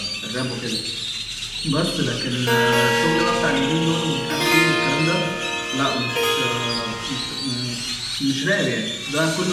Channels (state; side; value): identical; both; correlation 1.00